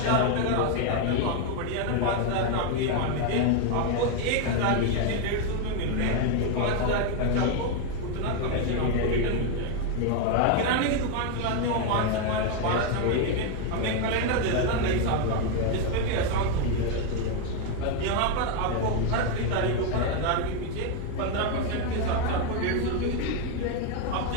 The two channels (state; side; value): different; both; correlation 0.01